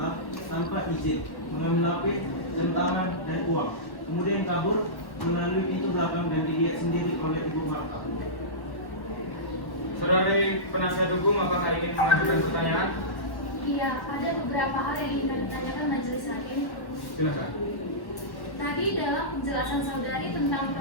tanpa izin, mengambil HP, jam tangan, dan uang. Kemudian kabur melalui pintu belakang dan dilihat sendiri oleh Ibu Marta. Saudari penasihat hukum, apakah ingin mengajukan pertanyaan? Iya, ada beberapa hal yang ingin kami tanyakan majelis hakim. Silakan. Tadi dalam penjelasan saudari tentang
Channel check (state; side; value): late; right; 1.1 ms